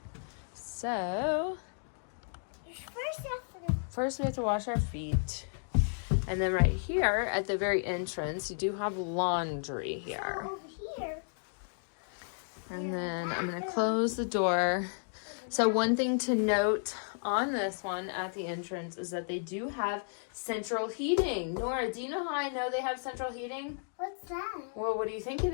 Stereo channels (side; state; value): right; silent; digital silence